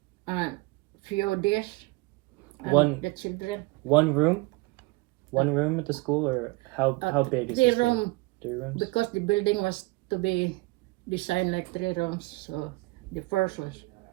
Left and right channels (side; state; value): left; quieter; 23.1 dB